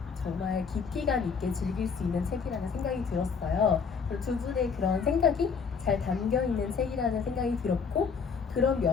정말 깊이감 있게 즐길 수 있는 책이라는 생각이 들었어요. 그리고 두 분의 그런 생각이 잘 담겨 있는 책이라는 생각이 들었고 그런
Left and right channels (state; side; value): quieter; right; 5.7 dB